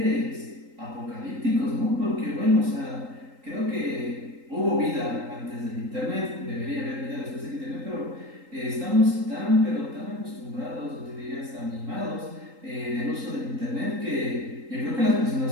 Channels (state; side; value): late; left; 3.8 ms